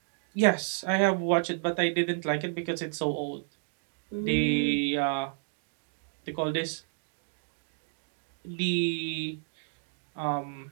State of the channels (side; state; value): left; silent; digital silence